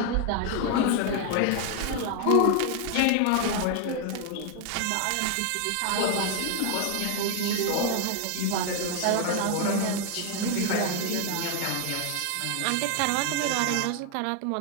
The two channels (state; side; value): different; both; correlation 0.00